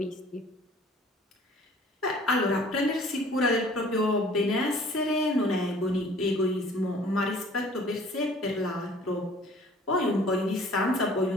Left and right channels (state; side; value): normal; both; correlation 0.52